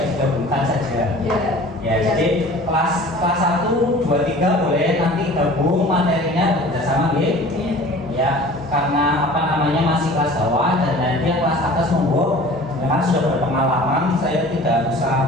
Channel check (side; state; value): both; normal; correlation 0.44